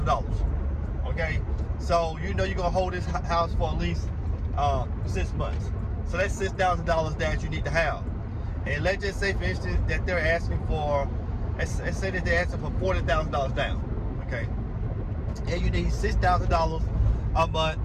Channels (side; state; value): both; identical; correlation 1.00